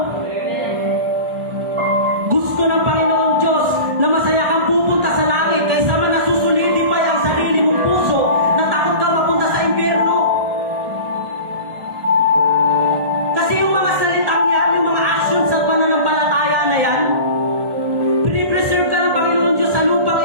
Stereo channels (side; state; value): left; late; 1.4 ms